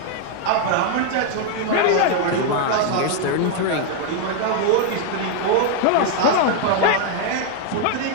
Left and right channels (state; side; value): different; both; correlation 0.00